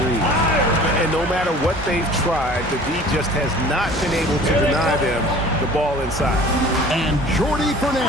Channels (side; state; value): both; normal; correlation 0.46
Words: threes. And no matter what they've tried, the D just has not been able to deny them the ball inside. And Jordi